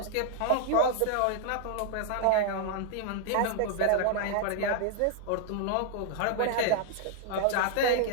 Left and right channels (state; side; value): different; both; correlation -0.01